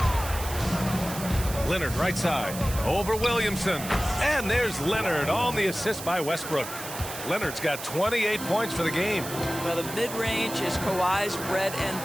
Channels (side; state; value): right; noise; hiss, 10 dB below the sound